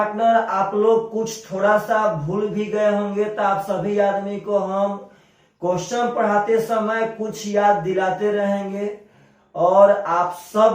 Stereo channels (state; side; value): identical; both; correlation 1.00